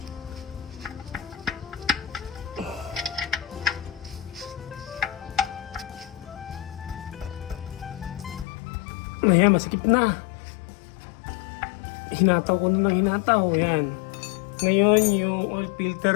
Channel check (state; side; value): drops out; right; at 8.5 s